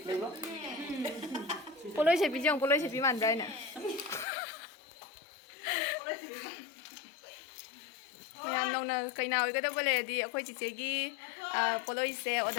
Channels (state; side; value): drops out; right; at 4.2 s